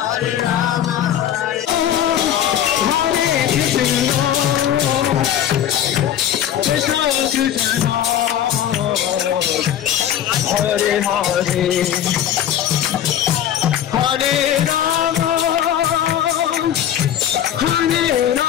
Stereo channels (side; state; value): right; quieter; 10.6 dB